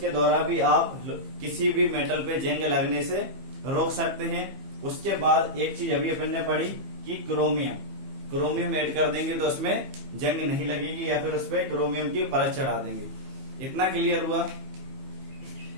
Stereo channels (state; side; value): late; left; 15 ms